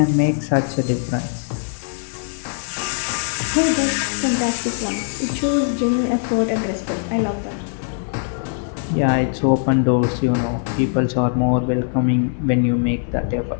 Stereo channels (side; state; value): right; silent; 65 dB below the other